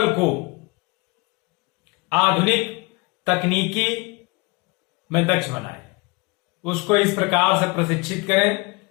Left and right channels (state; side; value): quieter; right; 27.0 dB